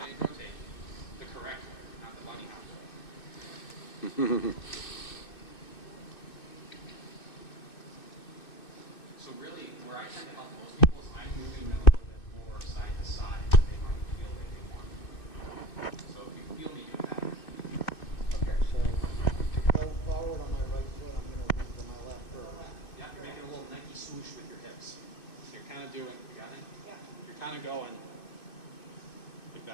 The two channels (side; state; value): right; late; 2.6 ms